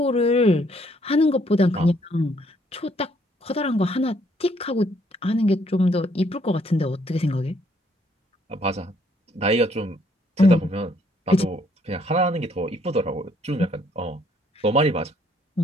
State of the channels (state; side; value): normal; both; correlation 0.67